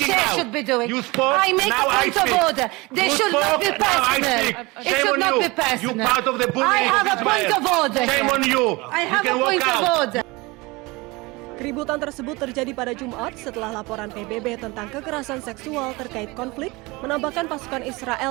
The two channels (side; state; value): left; quieter; 23.8 dB